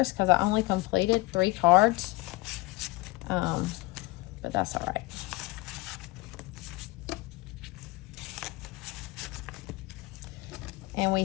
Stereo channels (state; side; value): quieter; right; 21.3 dB